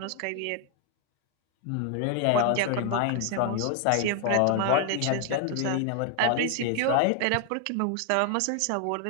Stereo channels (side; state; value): both; different; correlation 0.00